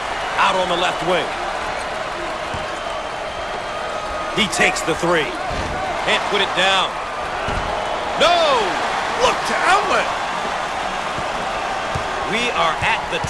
Out on the left wing. He takes the 3. Can't put it down. No! Look to outlet. We are at the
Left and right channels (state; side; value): identical; both; correlation 1.00